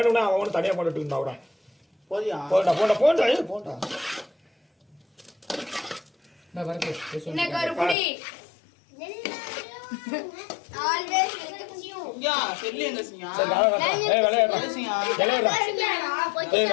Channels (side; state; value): right; drops out; at 8.0 s